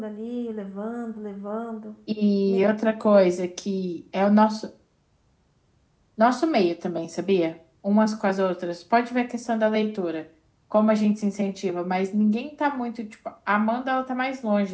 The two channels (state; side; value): identical; both; correlation 1.00